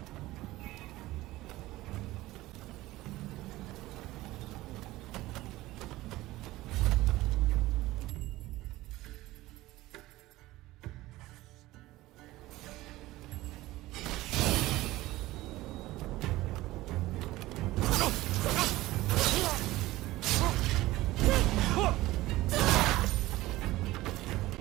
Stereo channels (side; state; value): left; quieter; 17.7 dB